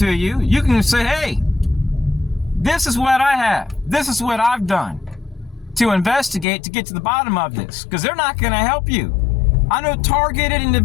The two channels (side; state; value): right; drops out; at 6.5 s